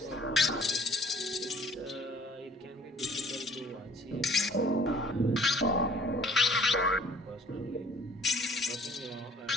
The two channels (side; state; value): both; normal; correlation 0.54